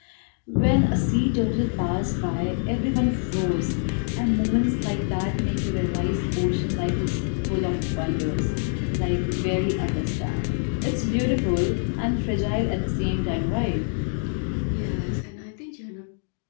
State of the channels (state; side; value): silent; right; 59 dB below the other